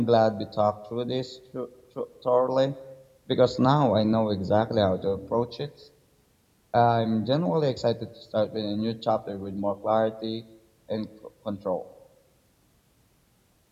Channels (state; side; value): identical; both; correlation 1.00